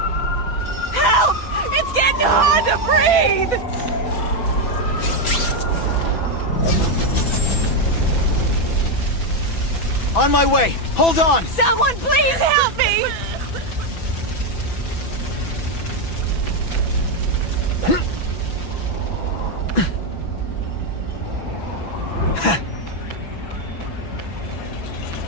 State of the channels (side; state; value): right; late; 6.0 ms